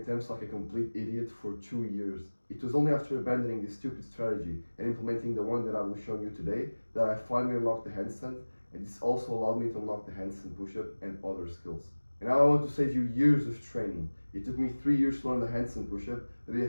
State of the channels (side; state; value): both; inverted; correlation -1.00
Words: like a complete idiot for 2 years. It was only after abandoning this stupid strategy and implementing the one that I will show you today that I finally unlocked the handstand, and this also allowed me to unlock the handstand push-up and other skills. And now I want to save you years of training. It took me 3 years to learn the handstand push-up, but